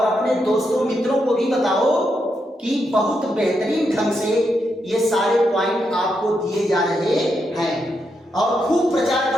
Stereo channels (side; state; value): both; normal; correlation 0.82